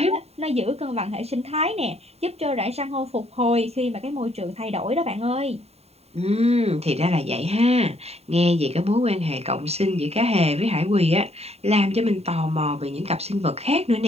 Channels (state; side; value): late; left; 0.30 ms